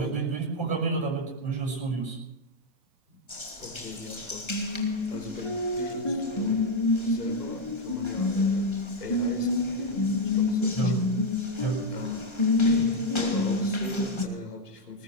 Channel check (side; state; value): right; late; 1.3 ms